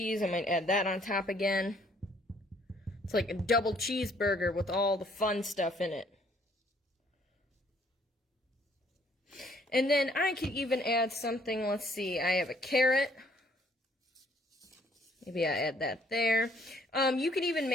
I might add that on top again. It's like a double cheeseburger with all the fun stuff in it. And then I could even add something, let's see, I have a carrot. Maybe I add that there. You could even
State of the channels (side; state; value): both; normal; correlation 0.63